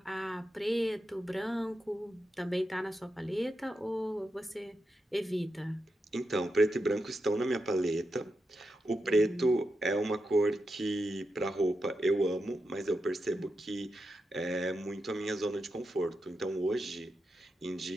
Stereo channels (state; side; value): normal; both; correlation 0.87